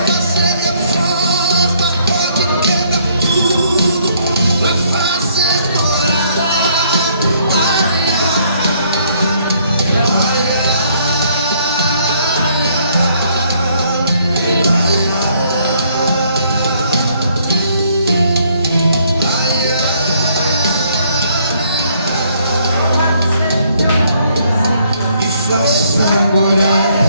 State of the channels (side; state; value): both; inverted; correlation -0.66